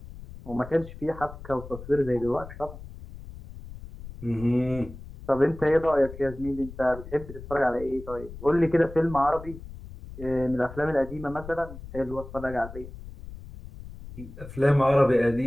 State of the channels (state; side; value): noise; left; rumble, 14 dB below the sound